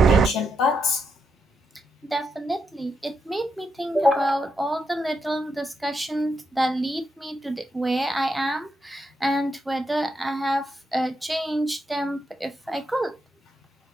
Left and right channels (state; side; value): normal; both; correlation 0.82